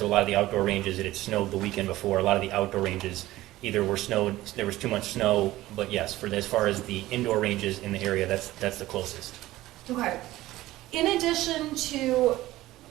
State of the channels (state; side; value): quieter; left; 16.5 dB